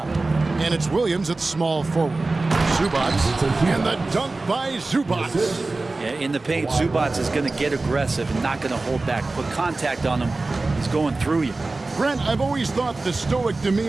And it's Williams at small forward. Zubats, and the dunk by Zubats. Yeah, in the paint, Zubats is going to get aggressive and not going to hold back. Put contact on him. He's going through you. Brent, I've always thought the stoic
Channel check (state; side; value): quieter; left; 3.4 dB